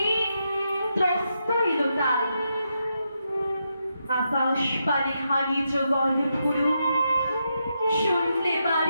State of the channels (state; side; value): inverted; both; correlation -0.83